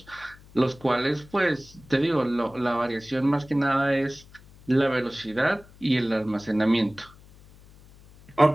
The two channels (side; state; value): left; noise; hum, 24 dB below the sound